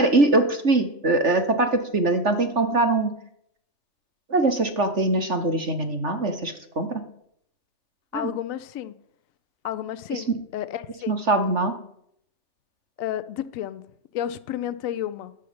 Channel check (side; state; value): left; late; 3.4 ms